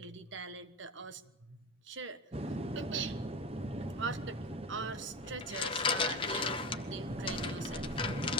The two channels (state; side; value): normal; both; correlation 0.24